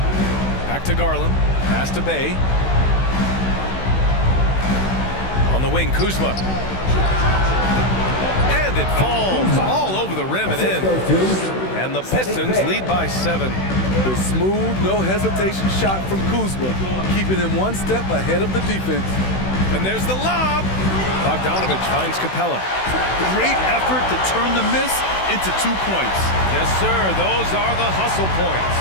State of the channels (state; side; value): late; right; 16 ms